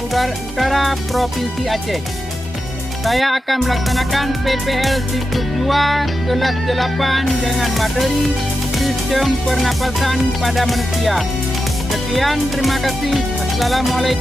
Provinsi Aceh. Saya akan melaksanakan PPL siklus 2 kelas 8 dengan materi sistem pernapasan pada manusia. Sekian, terima kasih.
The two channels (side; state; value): both; normal; correlation 0.89